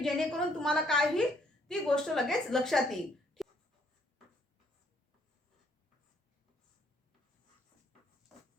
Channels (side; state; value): both; normal; correlation 0.67